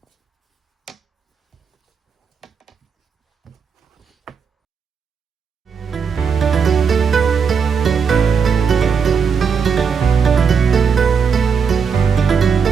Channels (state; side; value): quieter; left; 6.3 dB